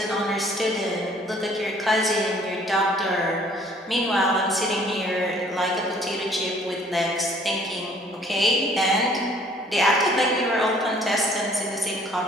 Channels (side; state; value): both; normal; correlation 0.58